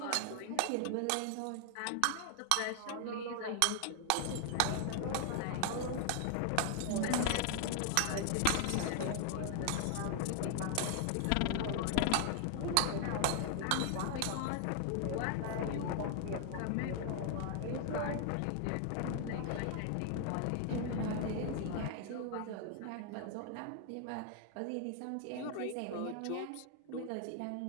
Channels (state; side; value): different; both; correlation 0.00